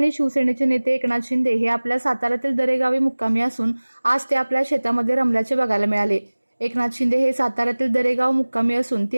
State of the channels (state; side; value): inverted; both; correlation -1.00